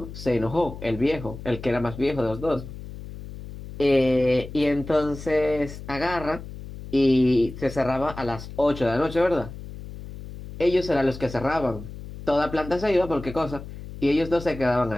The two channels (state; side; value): noise; left; hum, 12 dB below the sound